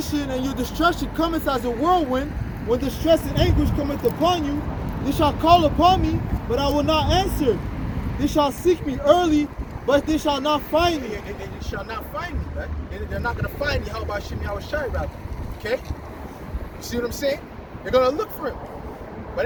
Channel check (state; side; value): identical; both; correlation 1.00